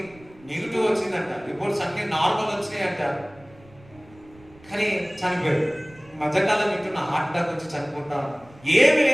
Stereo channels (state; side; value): noise; right; rumble, 25 dB below the sound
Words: నెగిటివ్ వచ్చిందంట, రిపోర్ట్స్ అన్ని నార్మల్ వచ్చినాయంట, కానీ చనిపోయారు. మధ్యకాలం వింటున్న హార్ట్ అటాక్ వచ్చి చనిపోతా ఏమి